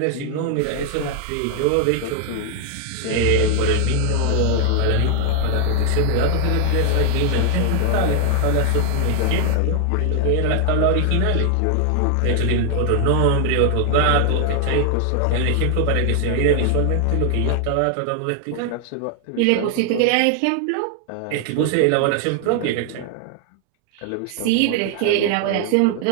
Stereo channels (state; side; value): different; both; correlation 0.00